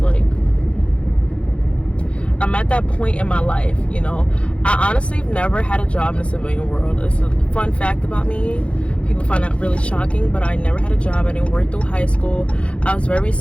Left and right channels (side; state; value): right; late; 0.060 ms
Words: Like, I'm at that point in my life, you know. I honestly have never had a job in the civilian world. It's a fun fact about me. People find that really shocking, but I never had a job. I didn't work through high school. I was very